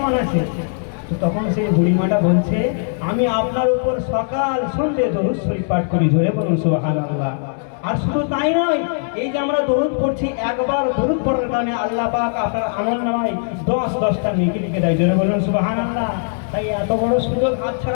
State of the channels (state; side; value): silent; right; digital silence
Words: আছে? তো তখন সেই বুড়িমাটা বলছে, আমি আপনার উপর সকাল সন্ধ্যে দরুদ শরীফ পাঠ করি। জোরে বলুন সুবহানাল্লাহ। আর শুধু তাই নয়, এই যে আমরা দরুদ পড়ছি, একবার দরুদ পড়ার কারণে আল্লাহ পাক আপনার আমলনামায় 10টা নেকি লিখে দেয়। জোরে বলুন সুবহানাল্লাহ। তাই এত বড় সুযোগ